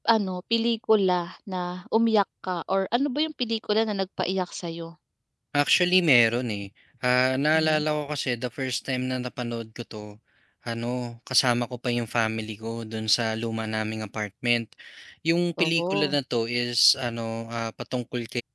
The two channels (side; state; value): both; identical; correlation 1.00